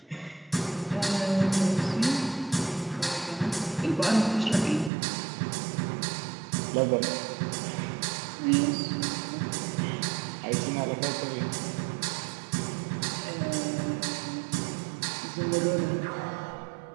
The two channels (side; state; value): left; drops out; at 4.9 s